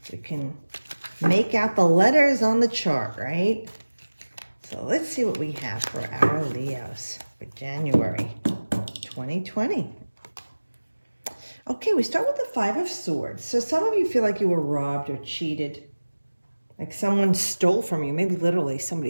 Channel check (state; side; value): inverted; both; correlation -1.00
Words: We can make out the letters on the chart, right? So let's see what we have for our Leos for January 2020. Okay, we start with the Five of Swords. So some of you feel like you were robbed or cheated. Like someone stole from you. Maybe literally